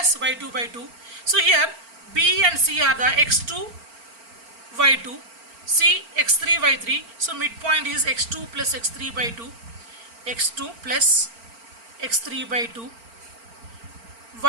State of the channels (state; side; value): late; left; 4.4 ms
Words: y2 by 2. So here B and C are the x2, y2, C x3, y3. So midpoint is x2 plus x3 by 2, x2 plus x3 by 2,